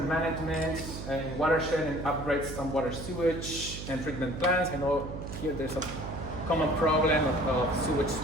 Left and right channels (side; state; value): right; noise; hum, 8 dB below the sound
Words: management in watershed and upgrade some water sewage and treatment plants. I know here there's a common problem of sewage